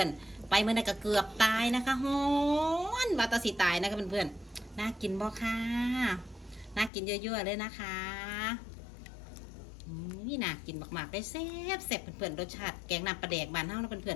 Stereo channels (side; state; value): right; drops out; at 6.9 s